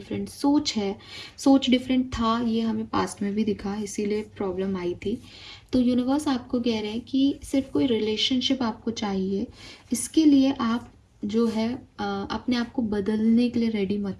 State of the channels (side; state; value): both; identical; correlation 1.00